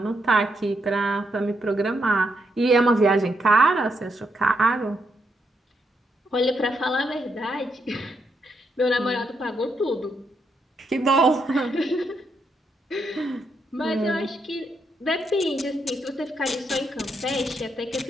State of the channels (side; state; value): both; normal; correlation 0.79